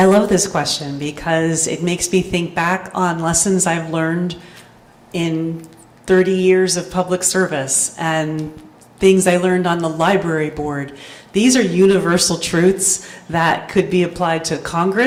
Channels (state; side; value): identical; both; correlation 1.00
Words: love this question because it makes me think back on lessons I've learned in 30 years of public service and things I learned on the library board. These are universal truths that could be applied to